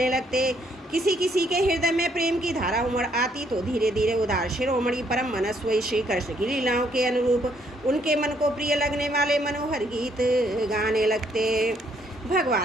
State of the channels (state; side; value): normal; both; correlation 0.69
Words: लगते। किसी किसी के हृदय में प्रेम की धारा उमड़ आती तो धीरे धीरे उदार शिरोमणि परम मनस्वी श्री कृष्ण की लीलाओं के अनुरूप उनके मन को प्रिय लगने वाले मनोहर गीत गाने लगते।